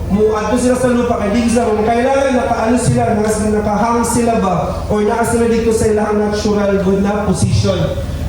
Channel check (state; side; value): identical; both; correlation 1.00